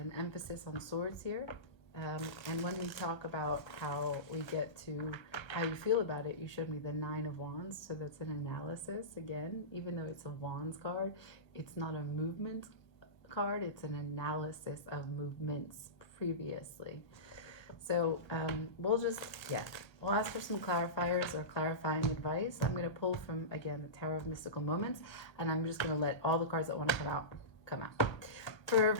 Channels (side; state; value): right; late; 1.3 ms